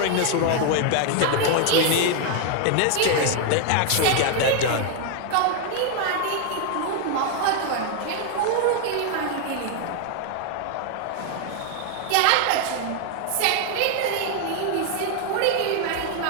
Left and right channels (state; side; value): different; both; correlation 0.00